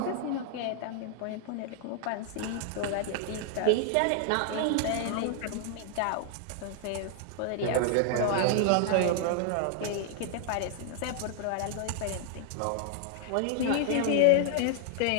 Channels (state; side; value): different; both; correlation 0.00